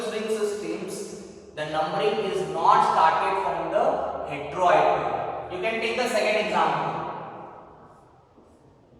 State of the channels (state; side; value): identical; both; correlation 1.00